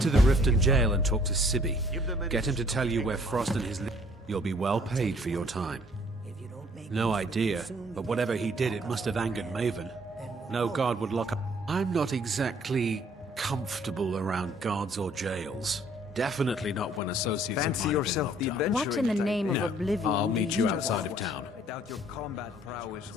to the Riften jail and talk to Sibby. Get him to tell you where Frost and his... You'll be well paid for your time. No idea, but whatever he did, it must have angered Maven. No guard would lock up... I'm not exactly comfortable around guards or jails. Definitely not when associates of mine have been locked up. What in the name of oblivion? I'll meet you outside of town. I doubt your combat prowess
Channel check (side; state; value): both; normal; correlation 0.59